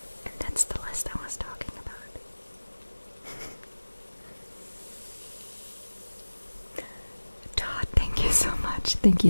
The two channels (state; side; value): inverted; both; correlation -1.00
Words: And that's the list I was talking about. Todd, thank you so much. Thank